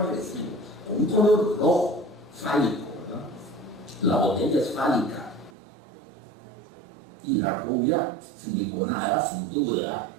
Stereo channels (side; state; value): left; drops out; at 5.5 s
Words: agresivo, con un color rojo, fálico, ¿verdad? La botella es fálica. Y la rubia, siliconada, sin duda,